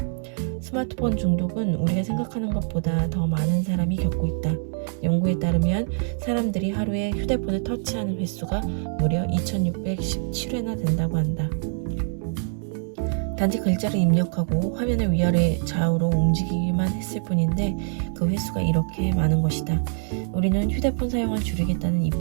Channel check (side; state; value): left; silent; 60 dB below the other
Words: 스마트폰 중독은 우리가 생각하는 것보다 더 많은 사람이 겪고 있다. 연구에 따르면 사람들이 하루에 휴대폰을 터치하는 횟수가 무려 2617회나 된다고 한다. 단지 글자를 입력하고 화면을 위아래 좌우로 움직이기만 했을 뿐인데 그 횟수가 이렇게 많은 것이다. 우리는 휴대폰 사용을